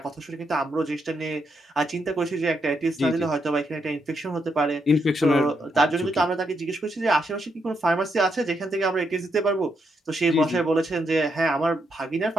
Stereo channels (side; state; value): both; normal; correlation 0.80